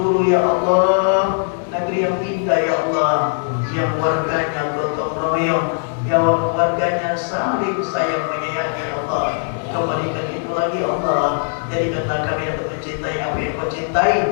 ya Allah, negeri yang indah ya Allah, yang warganya gotong royong, yang warganya saling sayang menyayangi ya Allah. Kembalikan itu lagi ya Allah, jadikanlah kami dapat mencintai apa yang Kau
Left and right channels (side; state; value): right; silent; 66 dB below the other